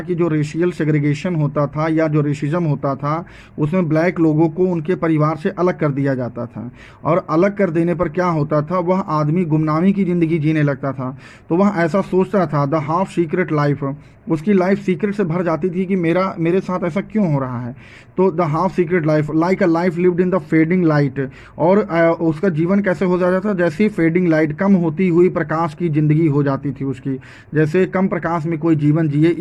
कि जो रेशियल सेग्रीगेशन होता था या जो रेसिज्म होता था, उसमें ब्लैक लोगों को उनके परिवार से अलग कर दिया जाता था, और अलग कर देने पर क्या होता था, वह आदमी गुमनामी की ज़िंदगी जीने लगता था। तो वह ऐसा सोचता था, द हाफ सीक्रेट लाइफ, उसकी लाइफ सीक्रेट से भर जाती थी कि मेरे साथ ऐसा क्यों हो रहा है। तो the half secret life like a life lived in the fading light, और उसका जीवन कैसे हो जाता था, जैसे फेडिंग लाइट, कम होती हुई प्रकाश की ज़िंदगी हो जाती थी उसकी, जैसे कम प्रकाश में कोई जीवन जिए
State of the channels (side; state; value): both; identical; correlation 1.00